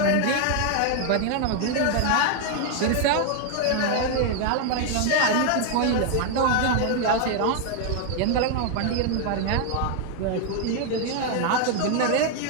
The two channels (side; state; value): both; different; correlation 0.00